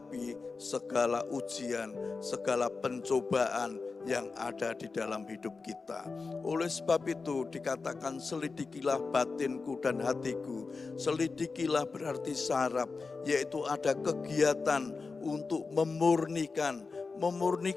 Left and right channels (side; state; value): right; quieter; 4.3 dB